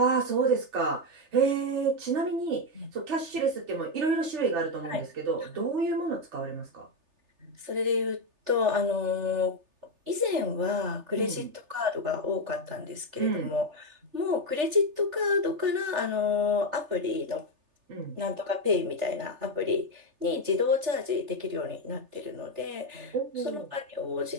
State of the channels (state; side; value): late; left; 3.3 ms